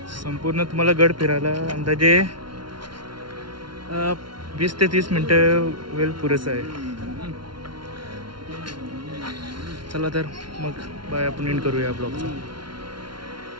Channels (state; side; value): late; left; 0.73 ms